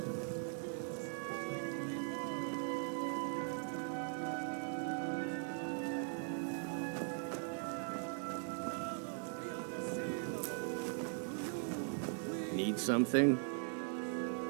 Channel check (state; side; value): silent; left; 51 dB below the other